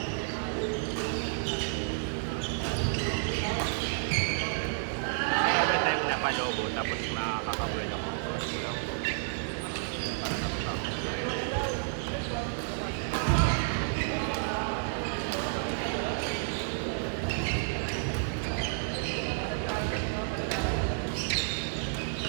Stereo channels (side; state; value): left; silent; digital silence